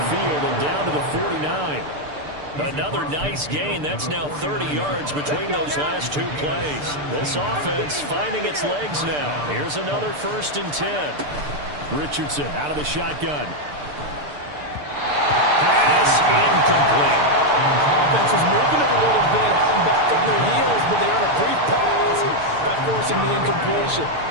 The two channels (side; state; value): left; late; 6.8 ms